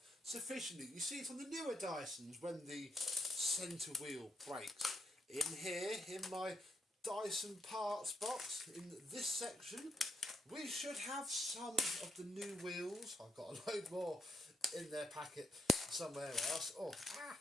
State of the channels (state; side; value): normal; both; correlation 0.77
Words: sufficiently. You see it on the newer Dysons when the centre wheel breaks. In here, in my Dyson parts box, in this section, we should have some of the new wheels. I've got a load more in their packet somewhere else.